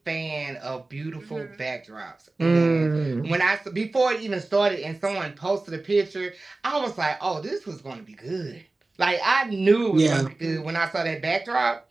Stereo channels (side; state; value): left; quieter; 3.2 dB